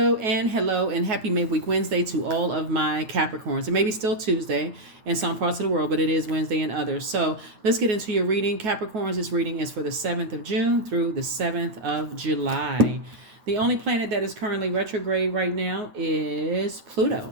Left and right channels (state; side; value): late; left; 9.4 ms